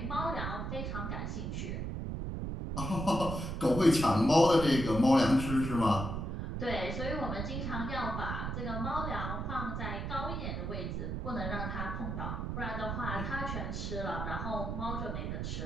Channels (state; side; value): noise; right; rumble, 3 dB below the sound